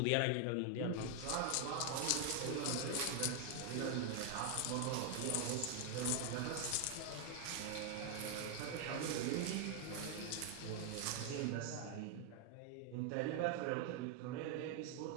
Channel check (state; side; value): different; both; correlation 0.00